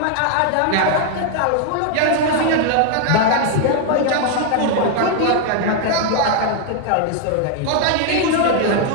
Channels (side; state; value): both; different; correlation 0.00